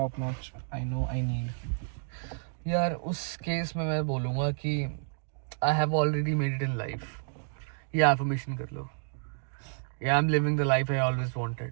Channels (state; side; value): silent; left; digital silence